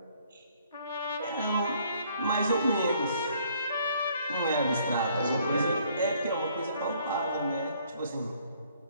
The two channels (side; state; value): both; inverted; correlation -0.63